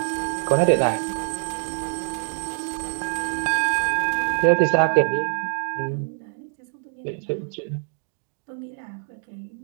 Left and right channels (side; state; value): left; silent; digital silence